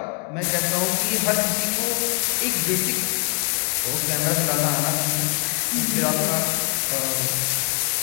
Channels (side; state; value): right; quieter; 39.8 dB